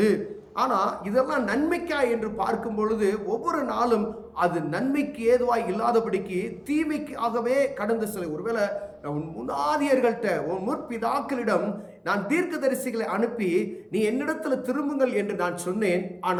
ஆனா இதெல்லாம் நன்மைக்கா என்று பார்க்கும் பொழுது ஒவ்வொரு நாளும் அது நன்மைக்கு ஏதுவாய் இல்லாதபடிக்கு தீமைக்காகவே கடந்து செல்ல. ஒருவேளை உன் முன்னாதியர்கள்ட்ட, உன் முற்பிதாக்களிடம் நான் தீர்க்கதரிசிகளை அனுப்பி நீ என்னிடத்துல திரும்புங்கள் என்று நான் சொன்னேன்,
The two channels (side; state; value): both; identical; correlation 1.00